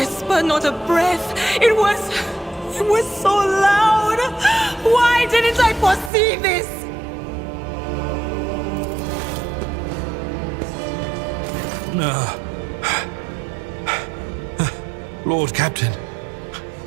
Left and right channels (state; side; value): drops out; left; at 6.1 s